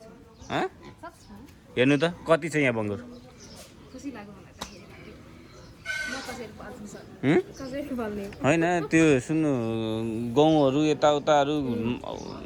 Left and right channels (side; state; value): both; identical; correlation 1.00